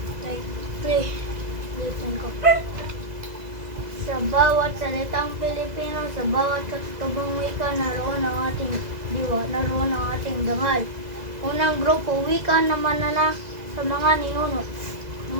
Play. Listen ko. Sa bawat salitang Pilipino, sa bawat katutubong wika, naroon ang ating diwa, naroon ang ating dangal. Unang grupo, wika na manana sa mga ninuno.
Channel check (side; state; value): left; late; 2.0 ms